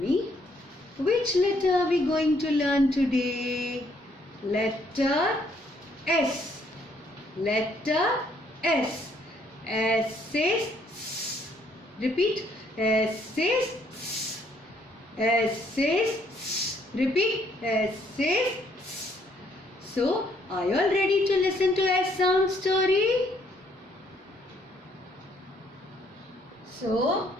which letter are we going to learn today? Letter S. Letter S. S says S. Repeat. S says S. S says S. Repeat. S says S. So, are you all ready to listen to S sound story? So,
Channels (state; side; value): normal; both; correlation 0.68